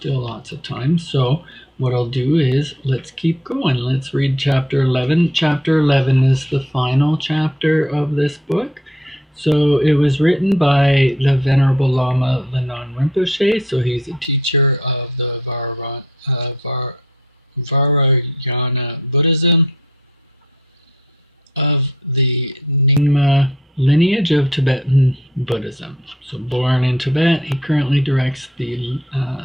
lots of time. So what I'll do is let's keep going. Let's read chapter 11. Chapter 11 is the final chapter of this book. So it was written by the Venerable Lama Lhanang Rinpoche. So he's a teacher of the Vajrayana Buddhism of the Nyingma lineage of Tibetan Buddhism. So born in Tibet, he currently directs the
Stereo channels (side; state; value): both; normal; correlation 0.61